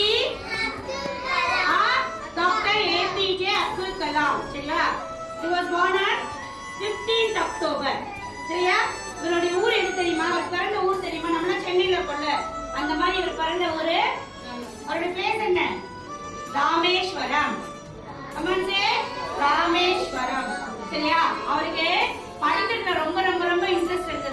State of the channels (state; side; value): identical; both; correlation 1.00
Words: Dr. APJ Abdul Kalam. சரியா? He was born on 15th October. சரியா? இவருடைய ஊர் எது தெரியுமா? அவர் பிறந்த ஊர் தெரியுமா? நம்ம சென்னையில இருக்கோம்ல, அந்த மாதிரி இவர் பிறந்த ஊரு. அவருடைய பேர் என்ன? ராமேஸ்வரம். அம்மாஞ்சே ராமேஸ்வரம். சரியா? அவருக்கு படிக்கிறதுல ரொம்ப ரொம்ப ரொம்ப இன்ட்ரெஸ்ட்